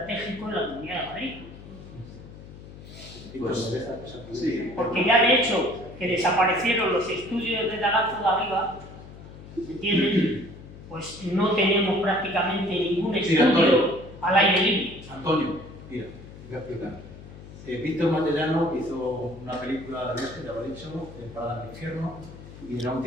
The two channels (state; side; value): noise; left; hum, 16 dB below the sound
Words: en la Comunidad de Madrid. Sí. Porque ya de hecho que desaparecieron los estudios de Daganzo de arriba, ¿me entienden? Pues no tenemos prácticamente ningún estudio al aire libre. Antonio, mira, voy a explicar. Víctor Matellano hizo una película de este, ya lo he dicho, Parada en el Infierno, y era un